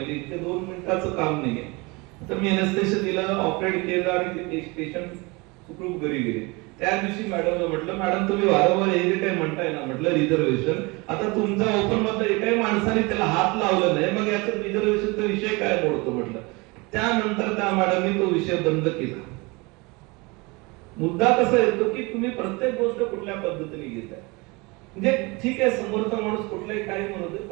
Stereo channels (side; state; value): left; quieter; 26.2 dB